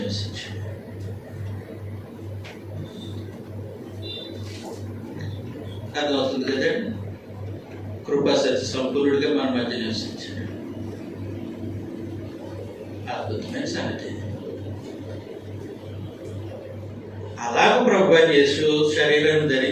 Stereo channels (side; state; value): both; identical; correlation 1.00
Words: అర్థమవుతుంది కదండి? కృపా సత్య సంపూర్ణుడిగా మన మధ్య నివసించాడు. అద్భుతమైన సంగతి. అలాగ ప్రభు యేసు శరీరాన్ని